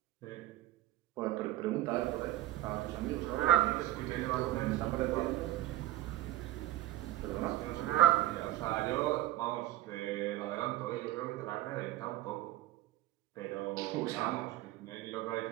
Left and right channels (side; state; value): left; quieter; 14.5 dB